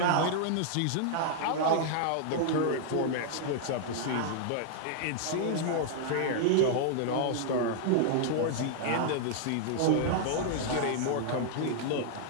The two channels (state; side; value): different; both; correlation -0.01